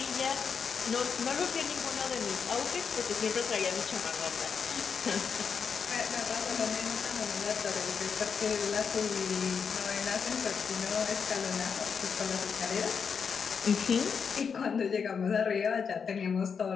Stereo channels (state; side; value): quieter; right; 6.3 dB